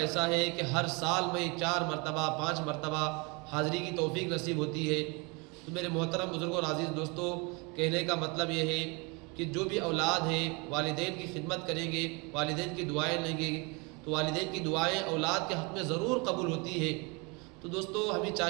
ہے کہ ہر سال میں 4 مرتبہ 5 مرتبہ حاضری کی توفیق نصیب ہوتی ہے۔ تو میرے محترم بزرگوں اور عزیز دوستو، کہنے کا مطلب یہ ہے کہ جو بھی اولاد ہیں والدین کی خدمت کریں گے، والدین کی دعائیں لیں گے، تو والدین کی دعائیں اولاد کے حق میں ضرور قبول ہوتی ہے۔ تو دوستو ہمیں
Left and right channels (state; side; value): quieter; left; 29.7 dB